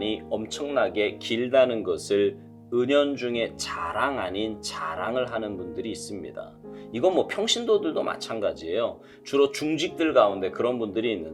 엄청나게 길다는 것을 은연중에 자랑 아닌 자랑을 하는 분들이 있습니다. 이건 평신도들도 마찬가지예요. 주로 중직들 가운데 그런 분들이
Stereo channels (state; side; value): identical; both; correlation 1.00